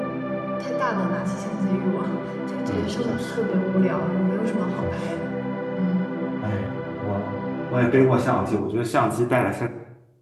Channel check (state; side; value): identical; both; correlation 1.00